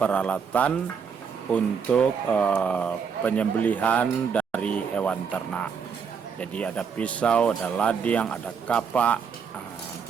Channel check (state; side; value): quieter; left; 6.4 dB